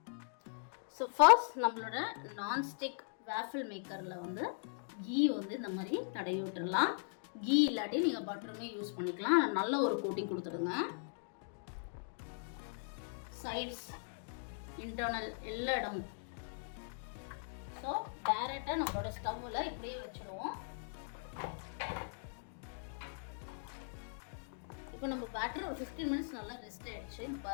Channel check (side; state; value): right; silent; digital silence